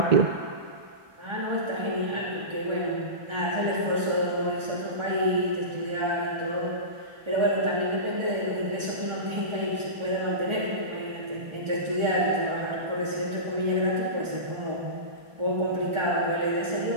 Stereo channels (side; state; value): left; late; 1.4 ms